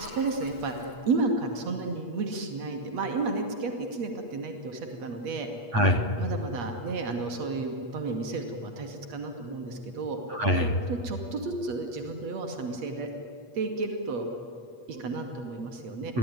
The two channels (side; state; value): left; late; 8.4 ms